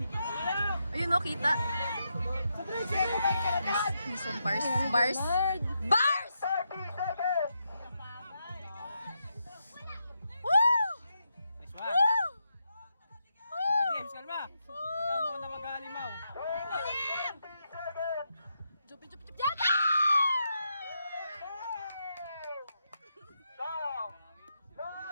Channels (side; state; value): both; inverted; correlation -0.83